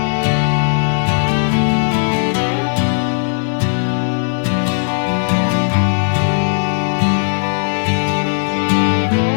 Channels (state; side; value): silent; right; digital silence